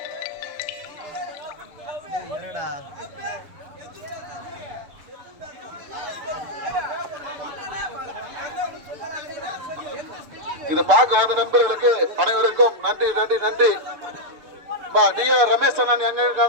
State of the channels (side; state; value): left; late; 6.7 ms